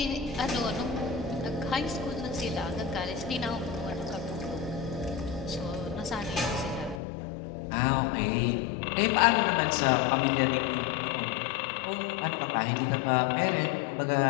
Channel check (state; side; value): drops out; right; at 7.0 s